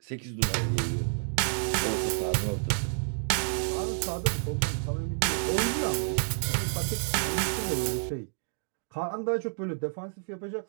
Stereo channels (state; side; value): silent; left; digital silence